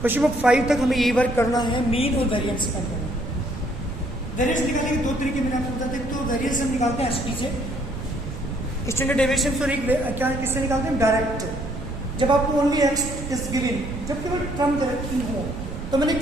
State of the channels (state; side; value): noise; right; rumble, 8 dB below the sound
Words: Question number 5 तक हमें ये वर्क करना है, मीन और वेरिएंस फाइंड करना है। वेरिएंस निकालने के 2 तरीके मैंने आपको बताते हैं। तो वेरिएंस हम निकालते हैं एसपी से, स्टैंडर्ड डेविएशन, सॉरी क्या किससे निकालते हैं, डायरेक्ट। जब आपको ओनली एक्स इज गिवन, जब केवल टर्म डायरेक्ट हो, तो मैंने एक